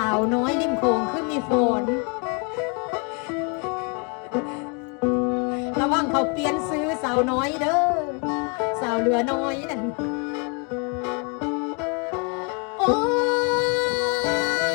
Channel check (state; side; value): quieter; right; 34.8 dB